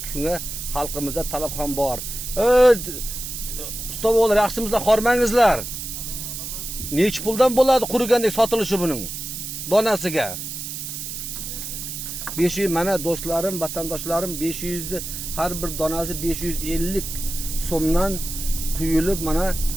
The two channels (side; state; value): right; noise; hiss, 7 dB below the sound